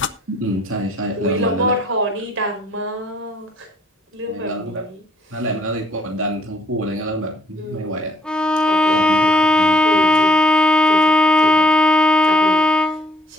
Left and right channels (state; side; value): normal; both; correlation 0.65